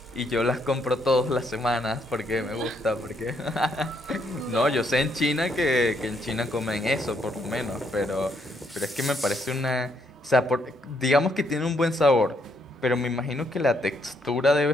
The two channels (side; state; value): both; normal; correlation 0.73